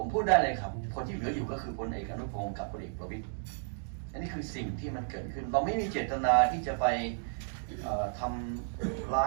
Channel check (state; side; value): silent; left; digital silence